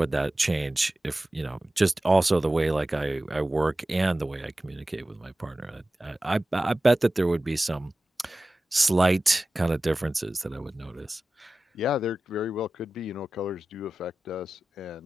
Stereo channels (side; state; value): both; normal; correlation 0.95